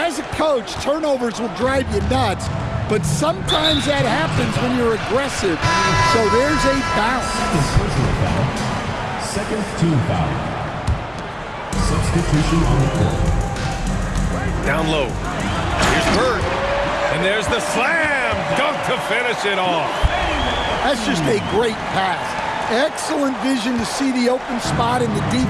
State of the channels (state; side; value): identical; both; correlation 1.00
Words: a coach, turnovers will drive you nuts, but sometimes that happens when you're aggressive. So there's a bounce. Personal foul. Second team foul. Substitution on the court. Down low. Here's Bird. And there's the slam dunk to finish it off. That's just a great pass. Excellent vision to see the open spot in the